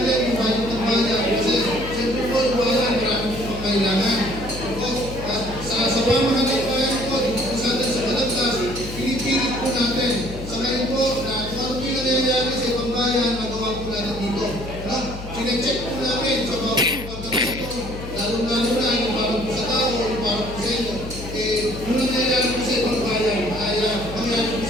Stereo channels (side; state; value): left; noise; hum, 11 dB below the sound